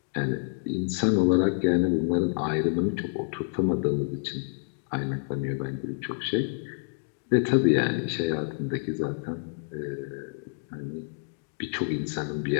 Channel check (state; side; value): silent; right; digital silence